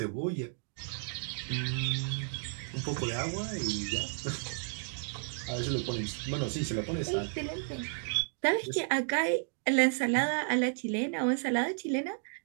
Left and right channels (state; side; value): silent; left; digital silence